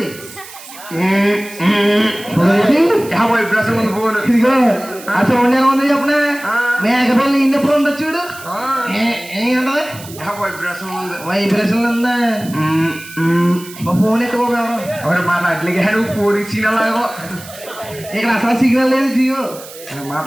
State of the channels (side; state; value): right; noise; hiss, 17 dB below the sound